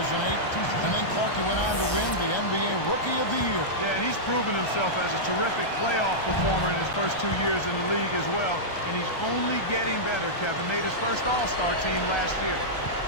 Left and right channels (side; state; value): right; late; 1.3 ms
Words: And then Clarkie went on to win the NBA Rookie of the Year. Yeah, and he's proven himself as a terrific playoff performer in his first 2 years in the league as well. And he's only getting better, Kevin. Made his first All-Star team last year.